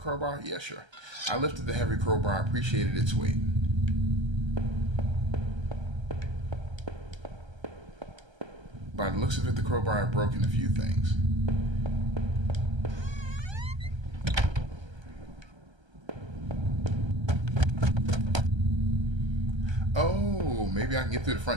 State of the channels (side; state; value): left; late; 1.3 ms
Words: Yeah, sure. I lifted the heavy crowbar. I appreciated its weight. By the looks of it, the crowbar had broken a few things. Oh, maybe I can get through the